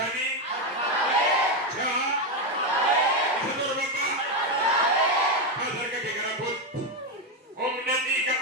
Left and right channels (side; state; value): both; normal; correlation 0.07